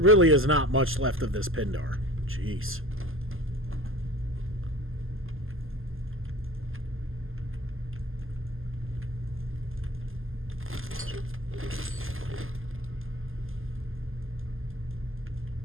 is not much left of this Pindar. Jeez.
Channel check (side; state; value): left; late; 0.60 ms